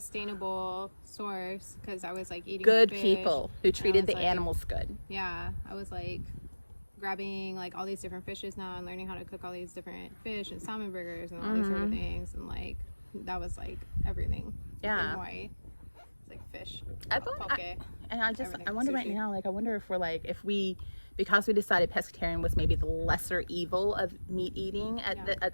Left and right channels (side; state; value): both; inverted; correlation -1.00